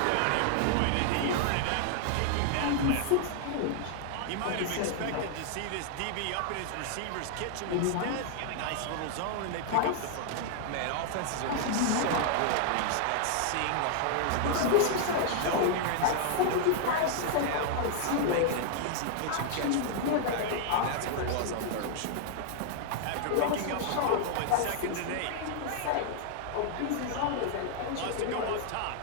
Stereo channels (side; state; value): both; different; correlation 0.00